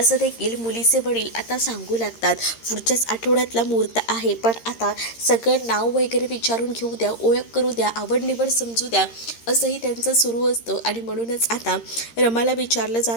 देखील मुलीचे वडील आता सांगू लागतात. पुढच्याच आठवड्यातला मुहूर्त आहे, पण आता सगळं नाव वगैरे विचारून घेऊ द्या, ओळख करू द्या, आवड निवड समजू द्या, असंही त्यांचं सुरू असतं. आणि म्हणूनच आता रमाला विचारलं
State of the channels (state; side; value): late; right; 13 ms